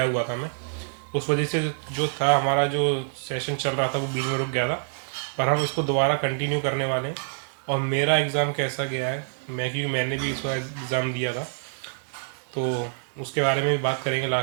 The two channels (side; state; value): left; silent; digital silence